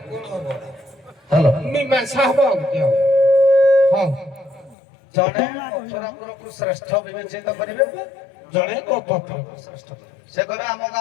হ্যালো ମୀମାଂସା ହବ ଆଉ କି ହବ ହଉ জনে মথুরাপুরକୁ শ্রেষ্ঠ বিবেচিত କରିବେ ଜଣେ ଗୋପପୁରକୁ ଶ୍ରେଷ୍ଠ ସେ କହିବେ ଆମ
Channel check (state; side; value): drops out; right; at 4.8 s